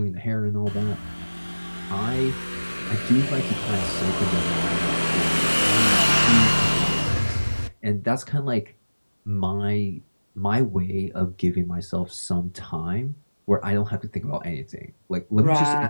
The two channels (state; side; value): inverted; both; correlation -1.00